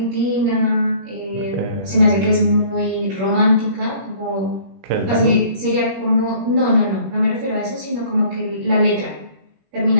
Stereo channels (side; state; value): left; late; 21 ms